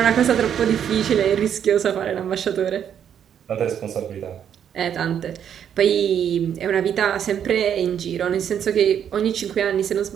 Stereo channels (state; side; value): quieter; left; 8.9 dB